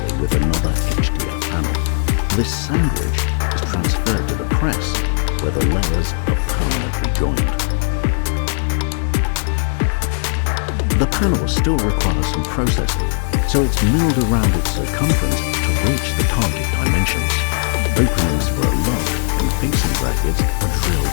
with another HDF panel. This sandwich is transferred to the press, where the layers are permanently joined. The panel still requires some processing, so it's milled around its circumference to reach the target dimensions. Openings for a lock and fixing brackets are drilled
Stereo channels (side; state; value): right; silent; 57 dB below the other